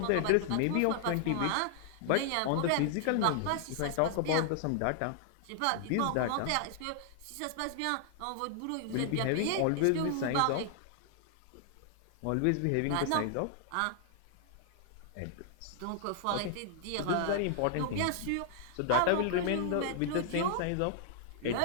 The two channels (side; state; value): both; different; correlation -0.01